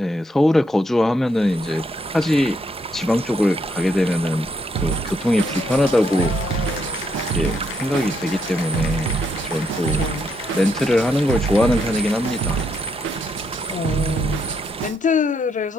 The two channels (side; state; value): both; normal; correlation 0.76